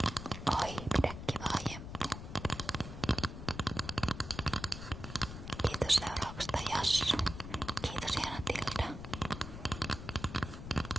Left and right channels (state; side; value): noise; left; rumble, 9 dB below the sound